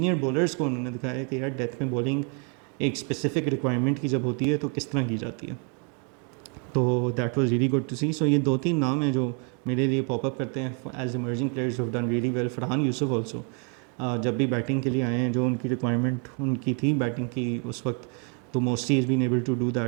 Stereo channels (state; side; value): quieter; left; 38.0 dB